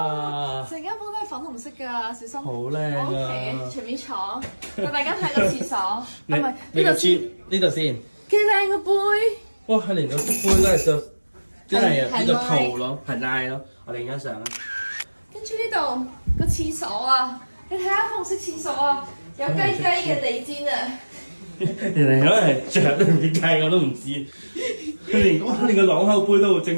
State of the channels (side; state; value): both; inverted; correlation -1.00